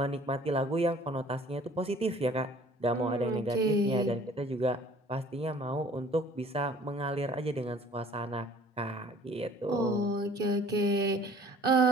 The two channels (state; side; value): normal; both; correlation 0.52